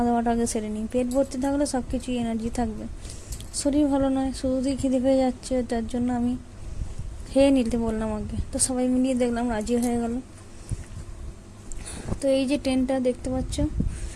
দাওয়াটা আগে সেরে নিই। পেট ভর্তি থাকলে সব কিছুই এনার্জি থাকবে। শরীর ভালো নয়, শুধুই খিদে পেয়ে যাচ্ছে, যার জন্য আমি খেয়ে নিতে বললাম আগে। তো সবাই মিলিয়ে দেখলাম রাজি হয়ে গেল। তো এই যে ট্রেনটা দেখতে পাচ্ছ,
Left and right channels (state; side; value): identical; both; correlation 1.00